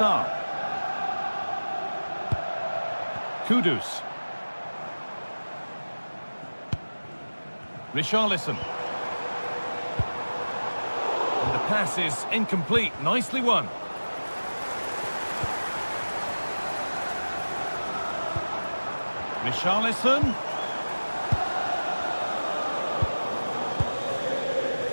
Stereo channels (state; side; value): inverted; both; correlation -1.00